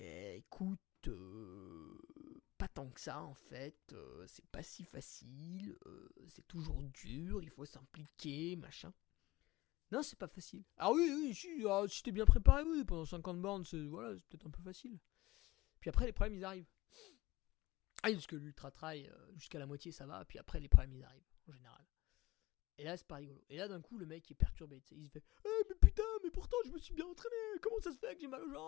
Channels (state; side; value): quieter; right; 19.2 dB